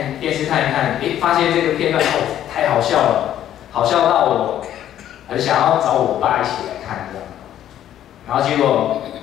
电视看一看，发现这个片段太好笑了，好笑到我很想要找我爸一起来看这样。然后结果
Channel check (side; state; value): right; quieter; 11.4 dB